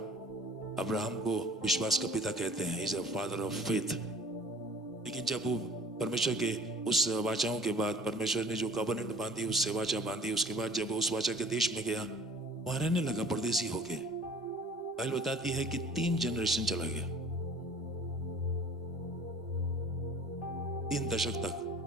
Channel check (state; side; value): normal; both; correlation 0.48